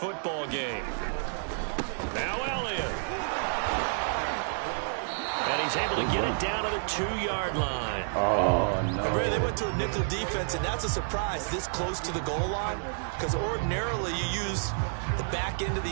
game. Now Elliott. And he's able to get it down to the 2-yard line. Oh, no. They went to a nickel defense, and that's a surprise this close to the goal line, because ordinarily you use the back end of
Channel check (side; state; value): left; silent; digital silence